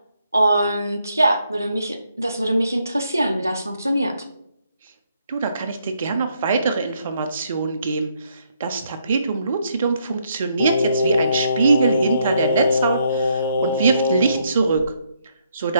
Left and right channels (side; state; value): both; inverted; correlation -0.74